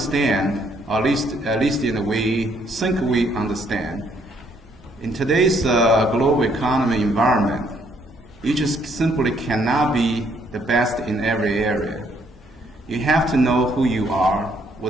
at least we think we understand, in today's global economy environment, you just simply cannot be the best in every area. You have to know who you are,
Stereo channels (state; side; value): normal; both; correlation 0.68